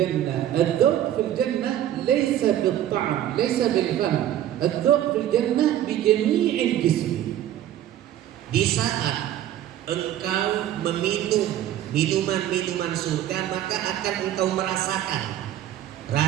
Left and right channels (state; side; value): quieter; left; 12.0 dB